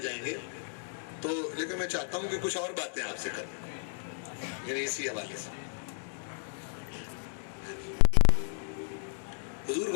جائیں گے. تو لیکن میں چاہتا ہوں کہ کچھ اور باتیں آپ سے کریں، یعنی اسی حوالے سے. حضور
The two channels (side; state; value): right; silent; 56 dB below the other